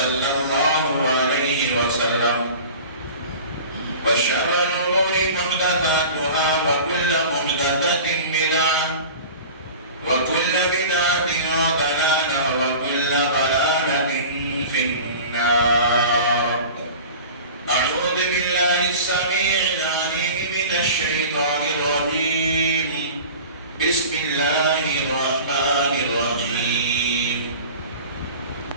الله عليه وسلم وشر الأمور محدثاتها وكل محدثة بدعة وكل بدعة ضلالة وكل ضلالة في النار. أعوذ بالله السميع العليم من الشيطان الرجيم. بسم الله الرحمن الرحيم.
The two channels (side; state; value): both; inverted; correlation -0.39